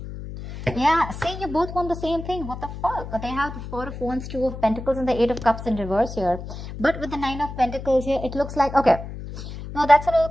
Yeah, see, you both want the same thing. What the fuck? They have the Four of Wands, Two of Pentacles, and the Eight of Cups in reverse here. But with the Nine of Pentacles here, it looks like, okay. No, that's a little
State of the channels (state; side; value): noise; left; hum, 10 dB below the sound